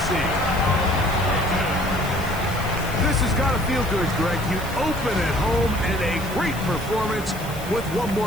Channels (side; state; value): left; noise; hiss, 15 dB below the sound